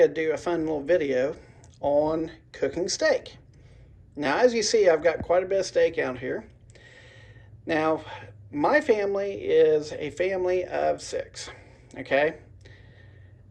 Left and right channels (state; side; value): identical; both; correlation 1.00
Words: to do a fun little video on cooking steak. Now, as you see, I've got quite a bit of steak out here. Now, my family is a family of six, okay,